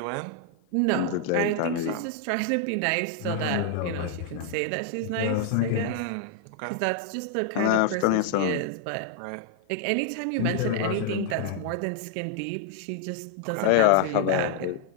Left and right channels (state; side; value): different; both; correlation 0.00